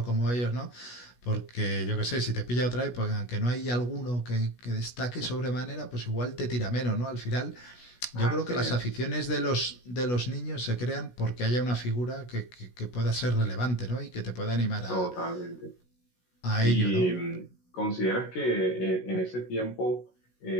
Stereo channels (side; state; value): right; late; 16 ms